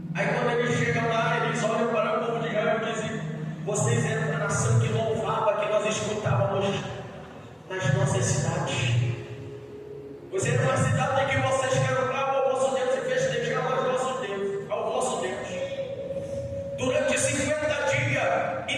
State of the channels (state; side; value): identical; both; correlation 1.00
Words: Aí quando eles chegam lá, eles olham para o povo de Israel e dizem: vocês eram a nação que louvava, que nós escutávamos nas nossas cidades. Vocês eram uma cidade em que vocês cantavam ao vosso Deus e festejavam ao vosso Deus. Durante 50 dias,